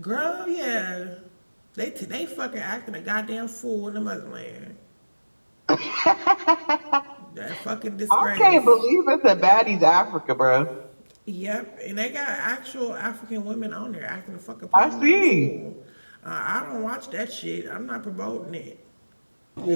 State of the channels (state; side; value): inverted; both; correlation -1.00